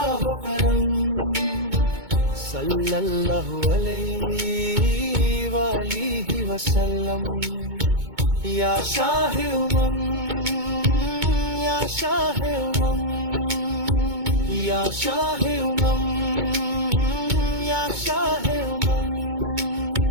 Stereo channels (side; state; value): left; late; 2.2 ms